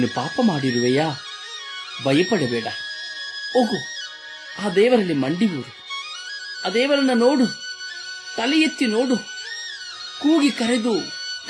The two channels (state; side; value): identical; both; correlation 1.00